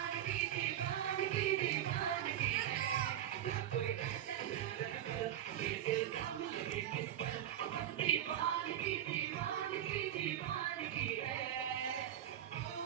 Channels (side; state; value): left; quieter; 11.2 dB